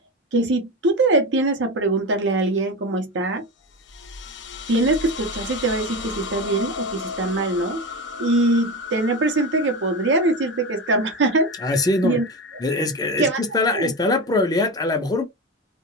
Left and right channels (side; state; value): both; normal; correlation 0.22